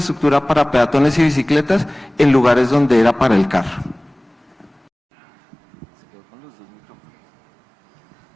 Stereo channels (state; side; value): drops out; left; at 4.8 s